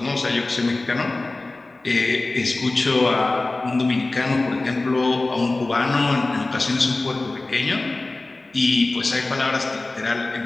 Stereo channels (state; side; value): quieter; right; 3.1 dB